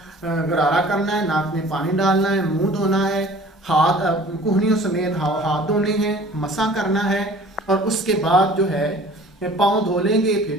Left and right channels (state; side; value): normal; both; correlation 0.48